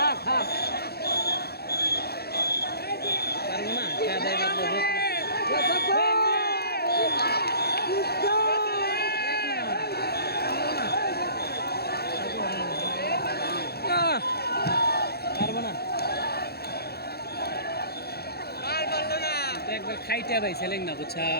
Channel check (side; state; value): right; late; 0.46 ms